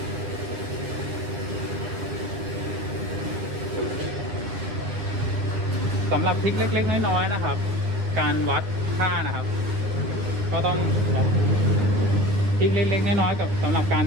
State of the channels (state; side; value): late; left; 9.7 ms